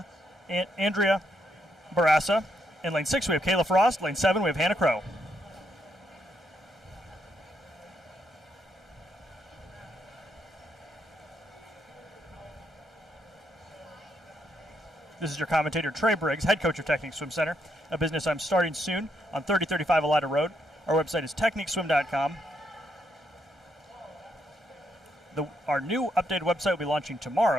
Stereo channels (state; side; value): normal; both; correlation 0.77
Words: Andrea Barassa. In lane 6, we have Kayla Frost. Lane 7, we have Hannah Crow. This is your commentator, Trey Briggs, head coach of Technique Swim Center, a business I'm starting soon on 3035 Elida Road. Our website is techniqueswim.com. Our new updated website will be launching